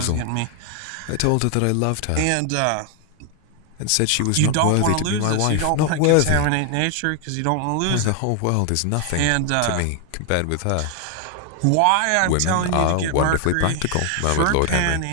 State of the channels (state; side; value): different; both; correlation 0.00